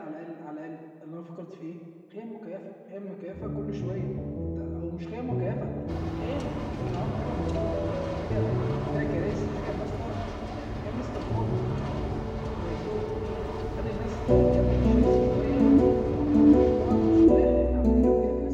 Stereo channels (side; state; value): both; identical; correlation 1.00